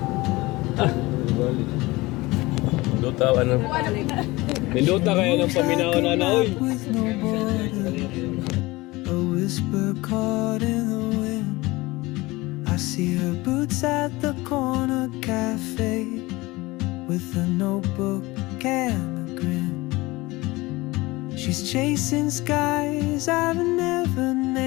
Minduta, ano? Minduta kaya ng paminaw na na, oy. With no border, a whisper caught in the wind. I see her boots at the corner cafe, with a notebook and a grin. She's chasing skies I've never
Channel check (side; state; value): right; quieter; 21.2 dB